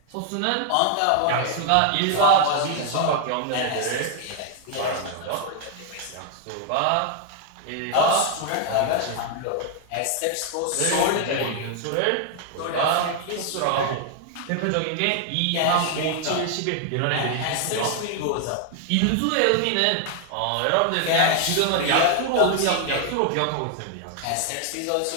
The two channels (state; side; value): different; both; correlation 0.00